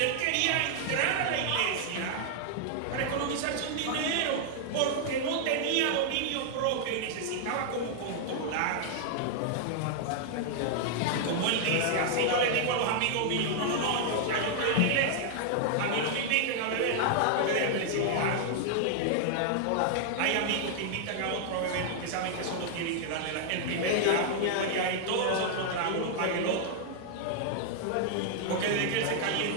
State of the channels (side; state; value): both; different; correlation 0.00